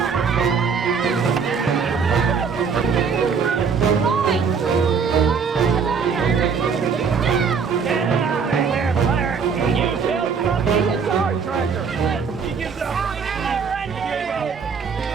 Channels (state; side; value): quieter; left; 5.8 dB